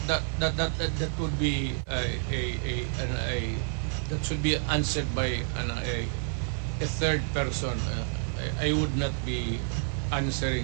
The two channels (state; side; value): silent; left; 58 dB below the other